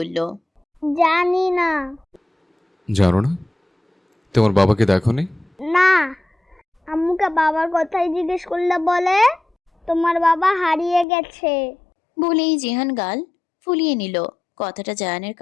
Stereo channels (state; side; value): drops out; right; at 11.1 s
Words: জানি না। জানো না? তোমার বাবাকে দেখোনি? না, আম্মুকে বাবার কথাই জিজ্ঞেস করলে বলে তোমার বাবা হারিয়ে গেছে। বলেই জিহান গাল ফুলিয়ে নিল। কথাটা জায়ানের